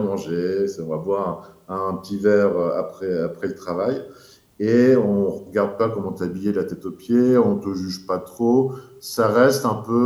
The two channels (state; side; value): identical; both; correlation 1.00